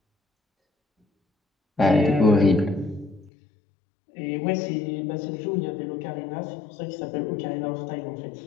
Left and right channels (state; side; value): drops out; right; at 3.3 s